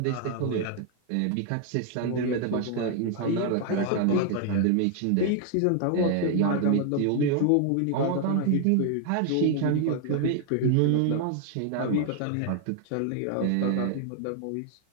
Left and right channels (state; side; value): different; both; correlation 0.00